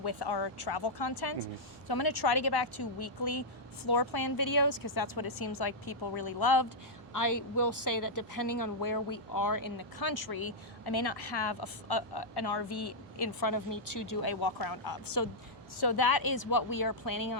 our travel content. Mm-hmm. So I'm going to try to get back to weekly floor plan videos because that's what it seems like people really loved. I will say that depending on where we are in the country, I may not have an RV in front of me to do a walk around of. So that is what we are planning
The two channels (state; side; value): normal; both; correlation -0.06